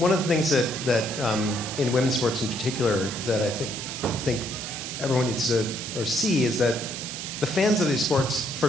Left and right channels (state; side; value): noise; right; hiss, 7 dB below the sound